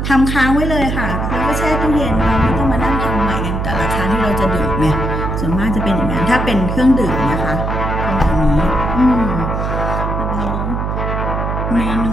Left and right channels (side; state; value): right; noise; hum, 2 dB below the sound